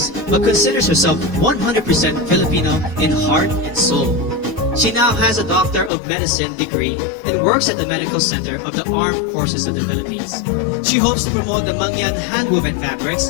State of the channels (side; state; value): right; drops out; at 5.9 s